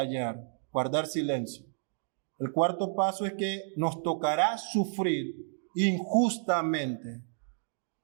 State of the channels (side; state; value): left; silent; digital silence